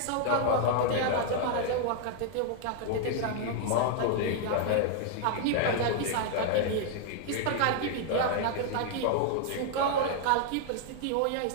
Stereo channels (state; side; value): different; both; correlation 0.00